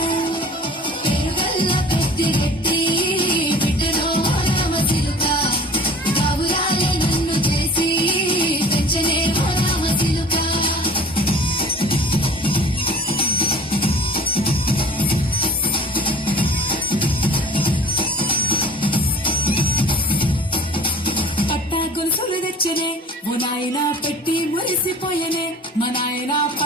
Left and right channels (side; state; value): both; normal; correlation 0.44